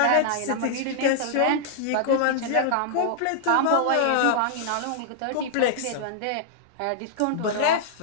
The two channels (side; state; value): both; different; correlation -0.01